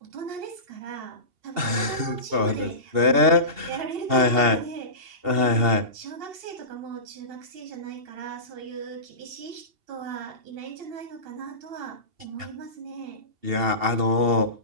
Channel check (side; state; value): left; late; 2.7 ms